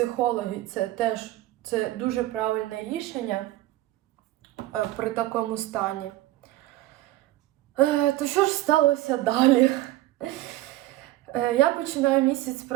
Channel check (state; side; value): quieter; left; 16.1 dB